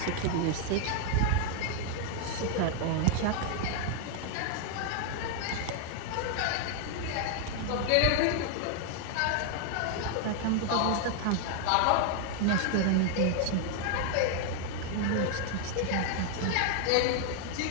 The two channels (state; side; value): different; both; correlation 0.00